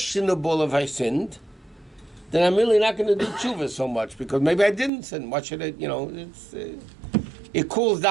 if I sinned, then I'm really not going to do tshuva so much, because maybe I didn't sin. What should I, it cools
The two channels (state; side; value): drops out; left; at 4.9 s